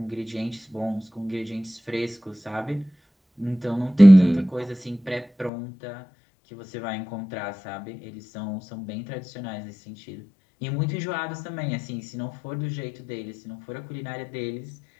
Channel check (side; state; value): right; drops out; at 5.5 s